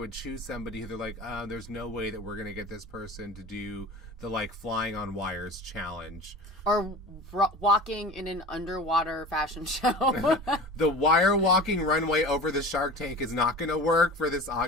choose somebody who they're there's no way that we're gonna get this person to do the flying on wires challenge or walking in an underwater fashion show. The wire walking runway over the Shark Tank is not going to work for this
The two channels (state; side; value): normal; both; correlation 0.35